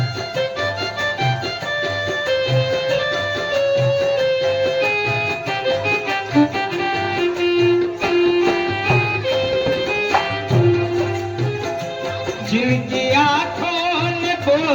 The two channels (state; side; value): identical; both; correlation 1.00